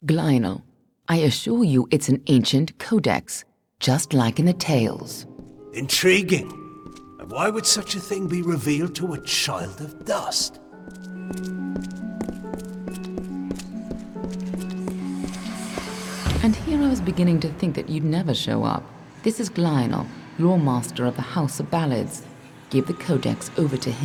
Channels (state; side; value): identical; both; correlation 1.00